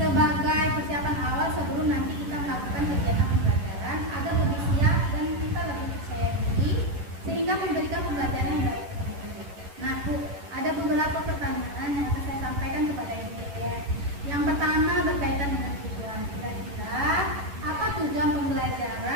persiapan awal sebelum nanti kita melakukan kegiatan pembelajaran agar lebih siap dan kita lebih percaya diri sehingga memberikan pembelajaran yang baik. Nah Bu, ada beberapa pertanyaan yang akan saya sampaikan kepada Ibu ya. Yang pertama berkaitan dengan tujuan. Kira-kira apa tujuan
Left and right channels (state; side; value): late; left; 11 ms